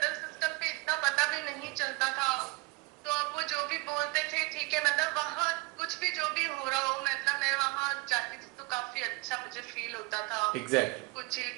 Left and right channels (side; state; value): left; quieter; 25.0 dB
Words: सिस्टम पे इतना पता भी नहीं चलता था, तो अब वो जो भी बोलते थे ठीक है, मतलब वहाँ कुछ भी जो भी हो रहा हो, मतलब मैं वहां जाती थी तो काफी अच्छा मुझे फील होता था। एग्जैक्टली। कुछ